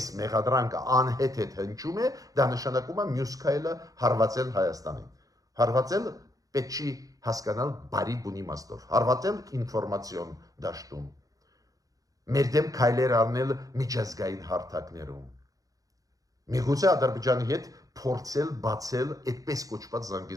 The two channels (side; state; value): left; late; 0.17 ms